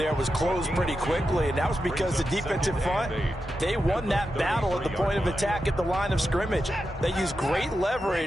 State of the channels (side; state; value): both; normal; correlation 0.89